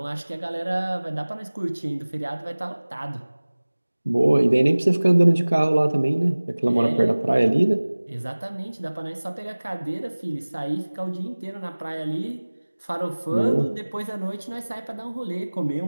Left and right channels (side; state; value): both; inverted; correlation -1.00